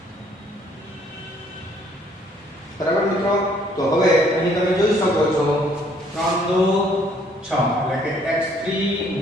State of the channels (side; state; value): both; normal; correlation 0.63